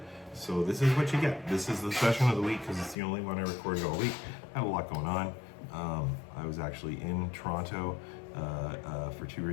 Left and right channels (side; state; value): right; drops out; at 3.0 s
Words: So this is what you get. This is the session of the week because it's the only one I recorded all week. I had a lot going on. I was actually in Toronto for 2